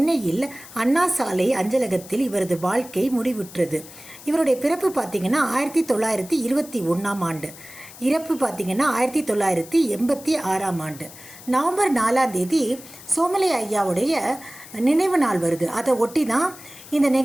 அண்ணா சாலை அஞ்சலகத்தில் இவரது வாழ்க்கை முடிவுற்றது. இவருடைய பிறப்பு பார்த்திங்கன்னா 1921ஆம் ஆண்டு, இறப்பு பார்த்திங்கன்னா 1986ஆம் ஆண்டு. நவம்பர் 4ஆம் தேதி சோமலே ஐயாவுடைய நினைவு நாள் வருது. அதை ஒட்டி தான் இந்த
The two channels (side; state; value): left; noise; hiss, 18 dB below the sound